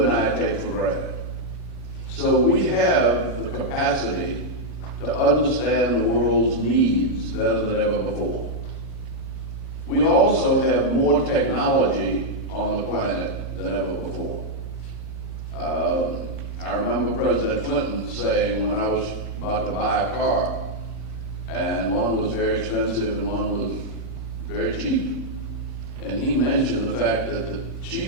and I take for granted. So we have the capacity to understand the world's needs better than ever before. We also have more technology on the planet than ever before. I remember President Clinton saying when I was about to buy a car, and one was very expensive and one was very cheap. And he mentioned the fact that the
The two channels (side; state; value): left; noise; hum, 30 dB below the sound